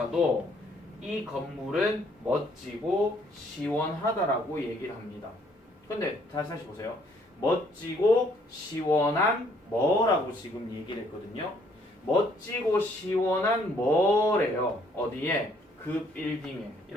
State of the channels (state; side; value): normal; both; correlation 0.65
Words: 이 건물은 멋지고 시원하다라고 얘기를 합니다. 근데 다시 보세요. 멋지고 시원한 뭐라고 지금 얘기를 했거든요. 멋지고 시원한 뭐래요. 어디에? 그 빌딩에.